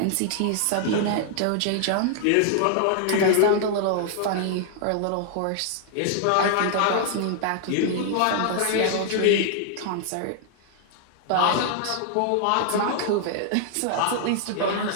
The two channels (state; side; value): different; both; correlation -0.01